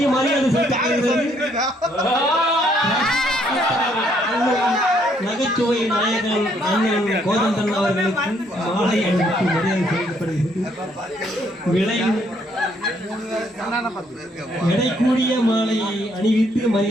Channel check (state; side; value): normal; both; correlation 0.69